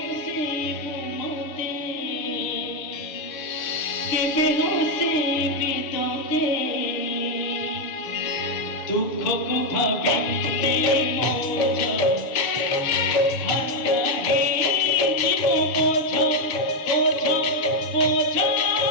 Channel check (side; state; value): right; late; 6.6 ms